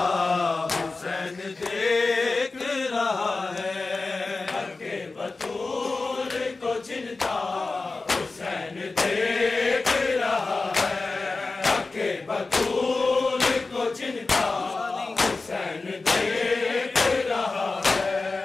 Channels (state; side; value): quieter; right; 3.7 dB